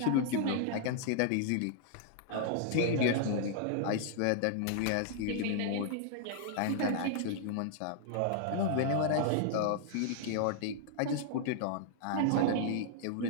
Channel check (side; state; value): both; different; correlation -0.01